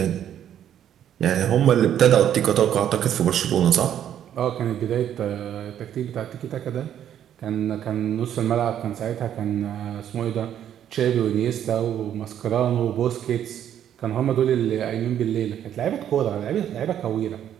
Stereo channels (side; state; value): left; quieter; 10.2 dB